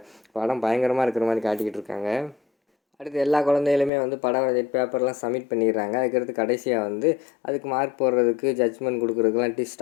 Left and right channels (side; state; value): right; drops out; at 3.9 s